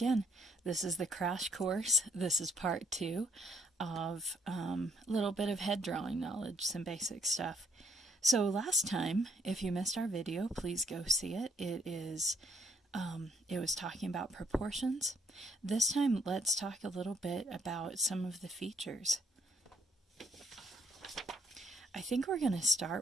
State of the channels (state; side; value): normal; both; correlation 0.67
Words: This is the crash course. This is part two of a little bit of head drawing knowledge, some basic stuff. So last time, if you missed our video, please go see it. It was talking about proportions. This time, let's talk a little bit about some of the features. I think we're going to start